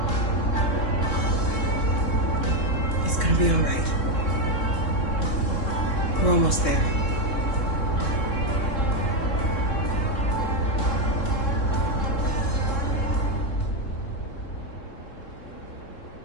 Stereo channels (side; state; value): right; late; 3.7 ms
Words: It's gonna be all right. We're almost there.